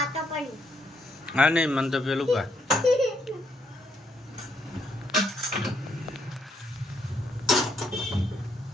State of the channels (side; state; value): both; normal; correlation 0.73